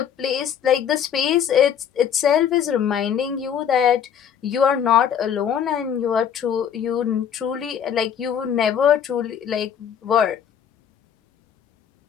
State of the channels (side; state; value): right; quieter; 8.5 dB